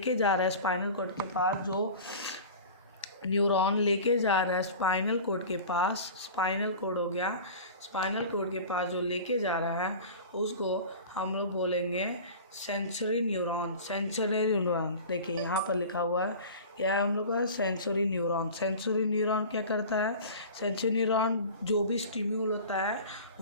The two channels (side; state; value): both; inverted; correlation -0.37